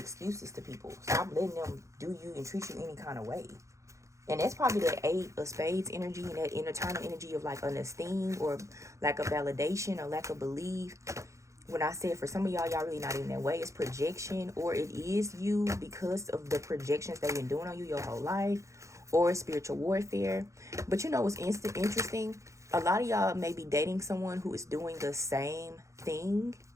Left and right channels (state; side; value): late; left; 0.15 ms